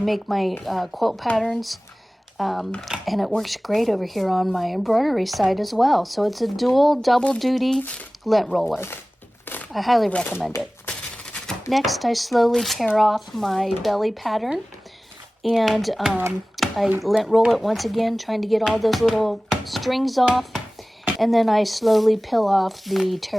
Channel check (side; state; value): both; normal; correlation 0.98